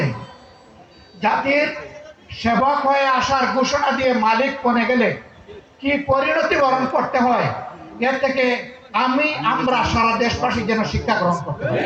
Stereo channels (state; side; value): identical; both; correlation 1.00